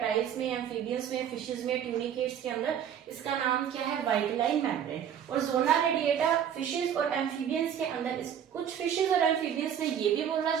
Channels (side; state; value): left; quieter; 9.0 dB